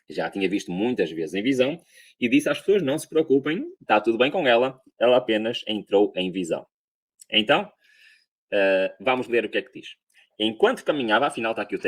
já tinha visto muitas vezes em visão e disse às pessoas, não se preocupem, está tudo bem com ela, ela apenas entrou em visão. Então, Vamos ler o que é que diz. Enquanto caminhava, afinal está aqui o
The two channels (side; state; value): both; identical; correlation 1.00